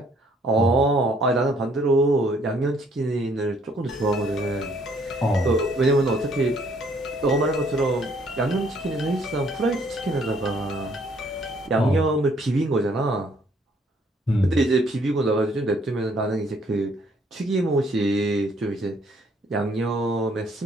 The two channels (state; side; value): normal; both; correlation 0.64